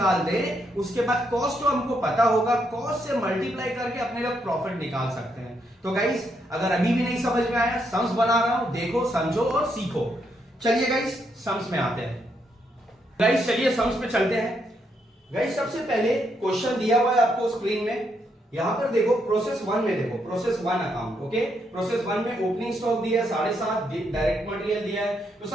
दे, उसके बाद कॉस्ट तो हमको पता होगा, कॉस्ट से मल्टीप्लाई करके अपने लोग प्रॉफिट निकाल सकते हैं। तो गाइस अगर अभी भी नहीं समझ में आया, सम्स बना रहा हूं, देखो, समझो और सीखो। चलिए गाइस सम्स में आते हैं। गाइस चलिए सम्स पे चलते हैं। गाइस सबसे पहले क्वेश्चन दिया हुआ है आपको स्क्रीन में, यहां पर देखो प्रोसेस 1 में, देखो प्रोसेस 1 अकाउंट। ओके, प्रोसेस 1 में ओपनिंग स्टॉक दिया है 7.5, डायरेक्ट मटेरियल दिया है। तो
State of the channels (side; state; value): both; normal; correlation 0.77